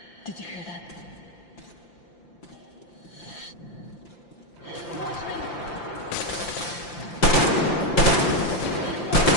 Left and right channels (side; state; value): right; late; 5.8 ms